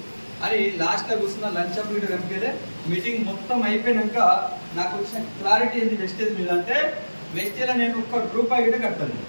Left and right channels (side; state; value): both; inverted; correlation -1.00